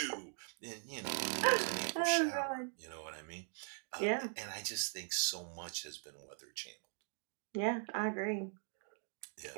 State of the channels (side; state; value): left; silent; 51 dB below the other